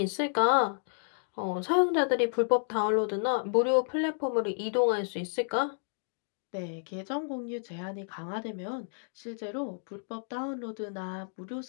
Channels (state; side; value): silent; right; digital silence